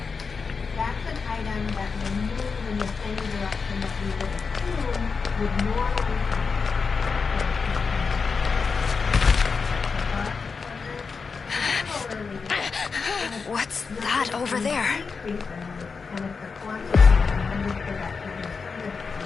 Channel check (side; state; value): right; quieter; 5.0 dB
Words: That's an item that will move in the same direction that we would assume would normally happen. What's that over there?